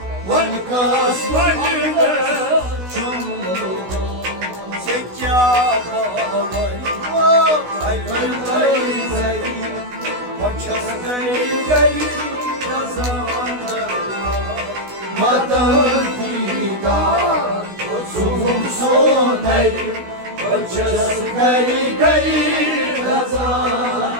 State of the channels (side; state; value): left; late; 16 ms